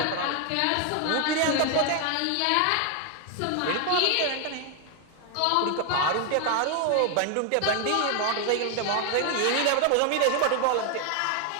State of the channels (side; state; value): both; different; correlation 0.01